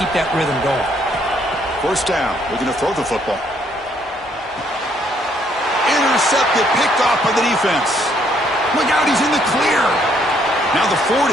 that rhythm going. 1st down. Looking to throw the football. Intercepted, picked off by the defense. Look out, he's in the clear. Now the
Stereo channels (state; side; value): normal; both; correlation 0.68